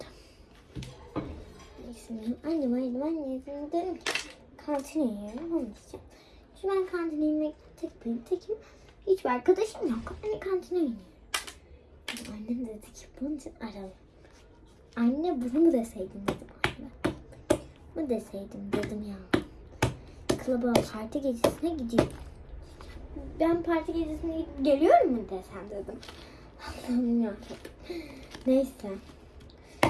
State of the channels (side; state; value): both; identical; correlation 1.00